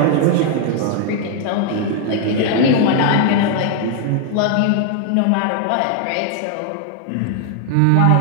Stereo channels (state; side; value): different; both; correlation 0.00